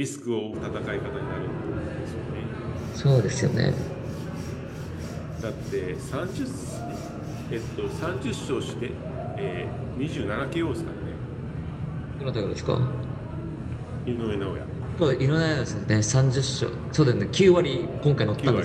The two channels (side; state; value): both; identical; correlation 1.00